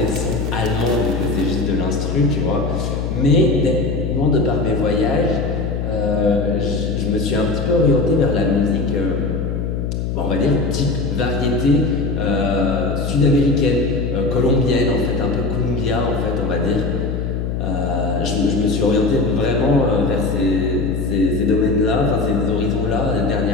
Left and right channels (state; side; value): noise; left; hum, 2 dB below the sound